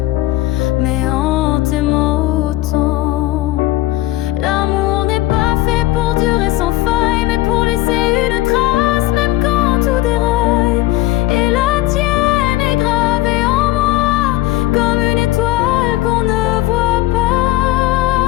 mais en t'aimant autant. L'amour n'est pas fait pour durer sans faille, mais pour laisser une trace, même quand tout déraille. Et la tienne est gravée en moi, comme une étoile qu'on ne voit pas,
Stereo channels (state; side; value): quieter; right; 16.6 dB